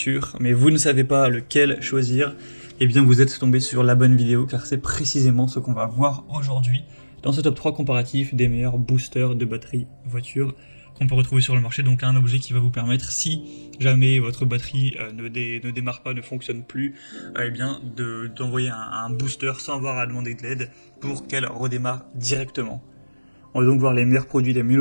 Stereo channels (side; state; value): both; inverted; correlation -1.00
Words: mais vous ne savez pas lequel choisir, eh bien vous êtes tombé sur la bonne vidéo, car c'est précisément ce qu'on va voir aujourd'hui dans ce top 3 comparatif des meilleurs boosters de batterie voiture qu'on peut retrouver sur le marché. Donc un objet qui va vous permettre, si jamais votre batterie ne démarre pas, ne fonctionne plus, eh bien d'envoyer un booster sans avoir à demander de l'aide pour qu'elle redémarre directement. On va donc voir les meilleurs produits, les mieux